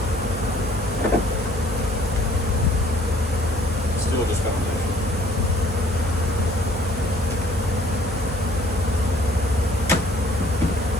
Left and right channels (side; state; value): both; normal; correlation 0.58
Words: Still just foundation.